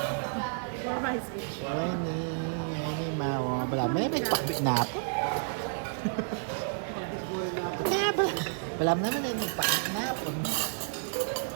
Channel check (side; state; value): left; silent; digital silence